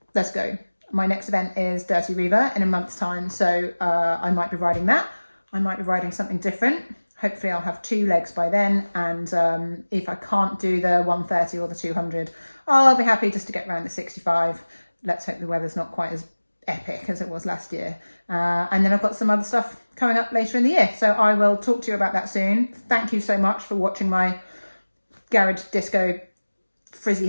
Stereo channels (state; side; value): inverted; both; correlation -1.00